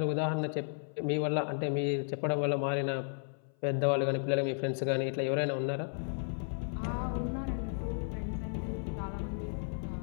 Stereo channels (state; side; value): silent; right; 55 dB below the other